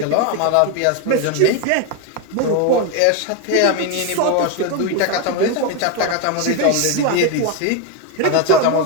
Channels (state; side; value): different; both; correlation 0.02